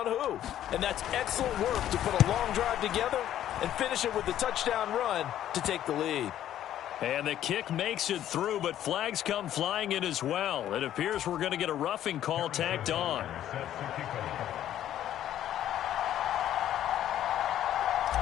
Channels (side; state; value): right; quieter; 11.7 dB